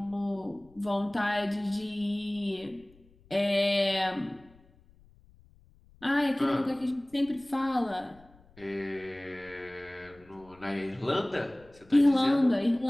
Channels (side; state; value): left; noise; rumble, 27 dB below the sound